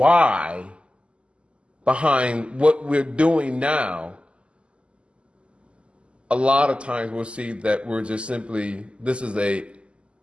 behind what we're doing now, a lot of times we'll see that we're just simply, this is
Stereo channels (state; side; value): late; left; 0.054 ms